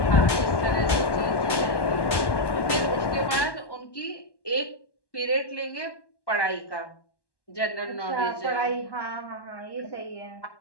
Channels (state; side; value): late; right; 1.1 ms